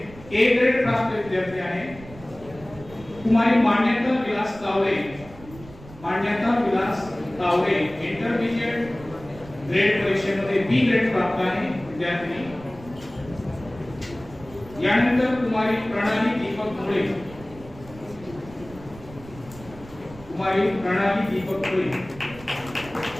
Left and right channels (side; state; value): right; noise; rumble, 18 dB below the sound